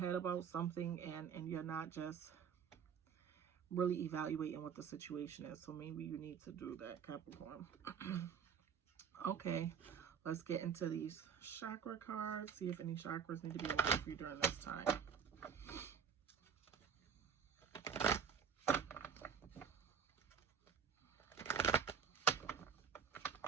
about something and you're not just really evaluating what the situation is. So maybe you need to do that, Capricorn. Okay, let's get into these chakra cards. See if any chakras need to be aligned for you during this time.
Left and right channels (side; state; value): left; quieter; 7.2 dB